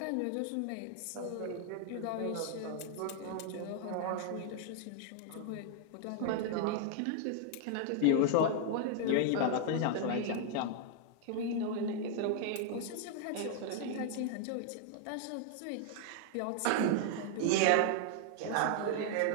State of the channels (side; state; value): both; different; correlation 0.00